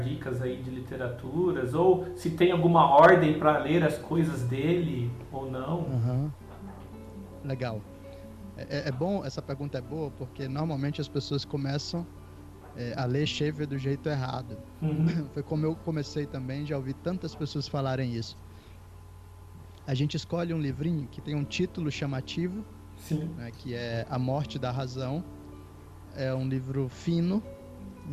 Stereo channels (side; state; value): both; identical; correlation 1.00